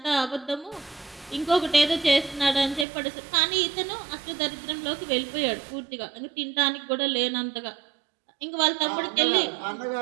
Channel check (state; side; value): drops out; left; at 2.9 s